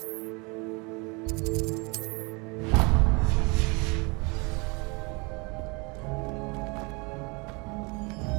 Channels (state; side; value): quieter; left; 29.6 dB